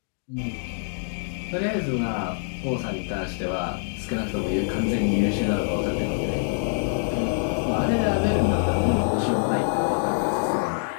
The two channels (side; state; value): right; silent; digital silence